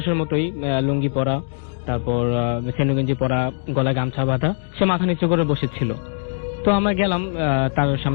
মতোই, লুঙ্গি পরা, তারপর সেনুগঞ্জি পরা, গলায় গামছা বাঁধা, সে মাথা নিচু করে বসেছিল। তো আমরা গেলাম, তার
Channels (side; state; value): right; silent; 65 dB below the other